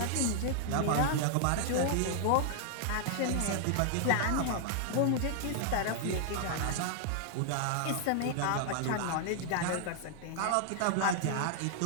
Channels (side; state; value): both; different; correlation 0.00